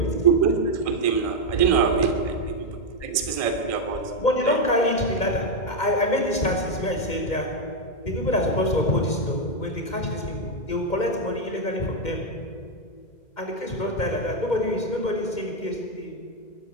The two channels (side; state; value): right; late; 2.1 ms